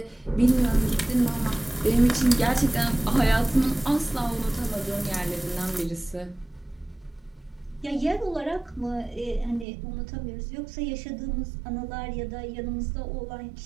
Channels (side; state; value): left; drops out; at 9.7 s